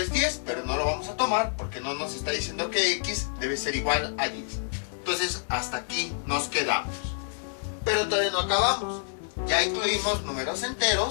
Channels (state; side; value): silent; right; 59 dB below the other